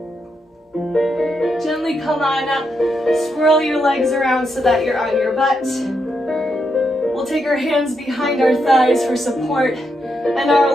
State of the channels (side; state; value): both; normal; correlation 0.82